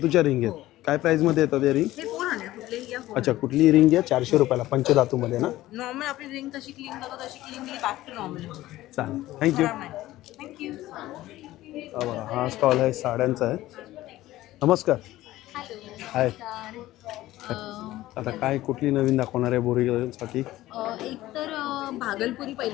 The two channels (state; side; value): quieter; right; 16.0 dB